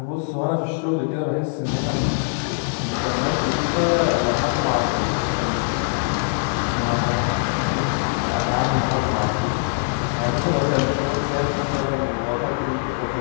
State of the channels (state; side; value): silent; right; digital silence